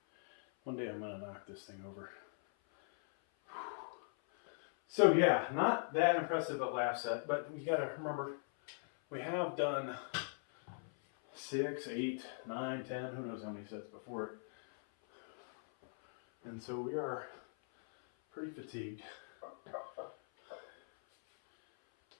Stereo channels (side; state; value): right; silent; 51 dB below the other